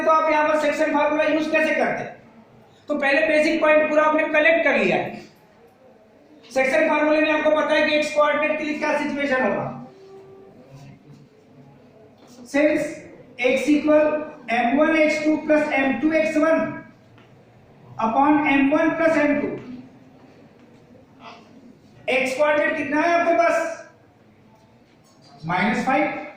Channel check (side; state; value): both; identical; correlation 1.00